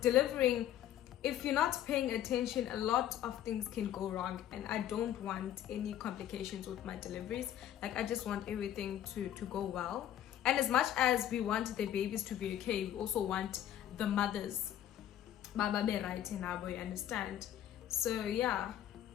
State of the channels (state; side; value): quieter; right; 11.5 dB